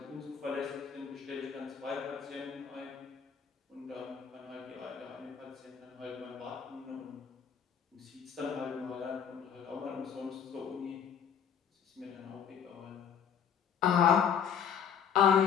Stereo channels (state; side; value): quieter; right; 7.8 dB